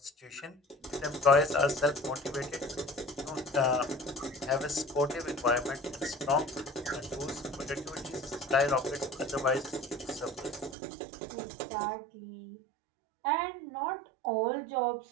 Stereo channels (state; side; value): drops out; left; at 10.8 s